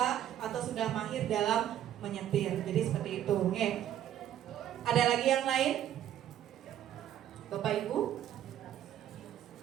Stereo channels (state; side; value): quieter; left; 11.2 dB